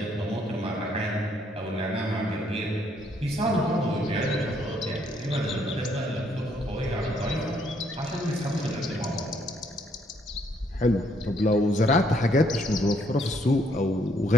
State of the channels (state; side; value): normal; both; correlation 0.69